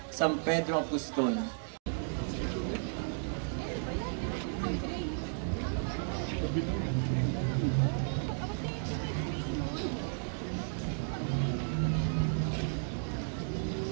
San Pedro Apostol.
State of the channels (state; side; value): silent; left; digital silence